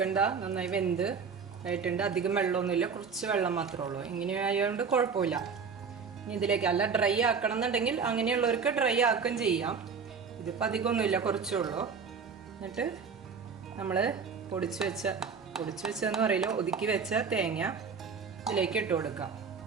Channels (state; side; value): quieter; left; 5.8 dB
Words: നന്നായി വെന്ത് ആയിട്ടുണ്ട്. അധികം വെള്ളമൊന്നുമില്ല, കുറച്ച് വെള്ളം മാത്രമേ ഉള്ളൂ. ഇങ്ങനെ ആയതുകൊണ്ട് കുഴപ്പമില്ല. ഇനി ഇതിലേക്ക് അല്ല ഡ്രൈ ആക്കണം എന്നുണ്ടെങ്കിൽ അങ്ങനെയുള്ളവർക്ക് ഡ്രൈ ആക്കുകയും ചെയ്യാം. ഇതിപ്പോൾ അധികമൊന്നുമില്ല, കുറച്ചേ ഉള്ളൂ. എന്നിട്ട് നമ്മൾ പൊടിച്ച് വെച്ചതെന്ന് പറയില്ല, ഒതുക്കി വെച്ച തേങ്ങ ഇതിലേക്ക് ഇട്ട് കൊടുക്കാം.